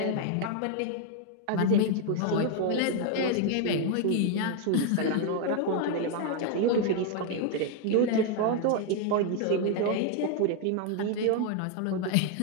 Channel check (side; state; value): both; different; correlation 0.01